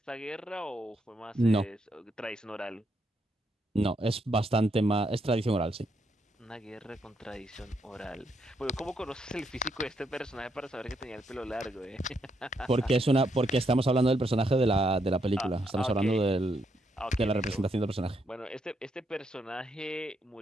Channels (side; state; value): both; normal; correlation 0.77